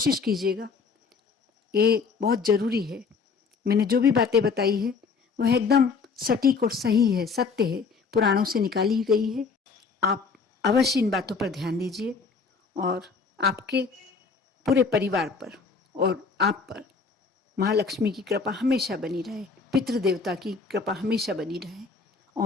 कीजिएगा, ये बहुत ज़रूरी है। मैंने जो भी बातें बताई है वह एकदम सटीक और सही है, सत्य है, पुराणों से निकाली गई है। आप अवश्य इन बातों पर ध्यान दीजिए और आपके पूरे परिवार पर और आप पर महालक्ष्मी की कृपा हमेशा बनी रहे, पितृदेवता की कृपा हमेशा बनी रहे।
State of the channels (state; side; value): quieter; right; 5.0 dB